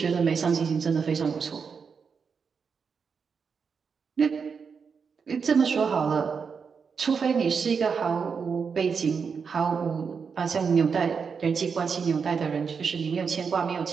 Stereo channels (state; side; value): quieter; left; 5.9 dB